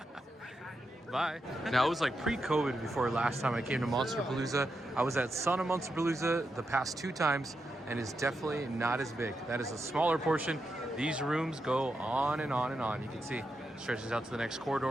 Bye. Now, it was like pre-COVID before last time I came to Monsterpalooza. I was at Son of Monsterpalooza the past 2 times, and it's definitely not as big. That is a smaller portion. These rooms go on and on and on. You can see it stretches out to the next corridor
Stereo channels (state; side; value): normal; both; correlation 0.86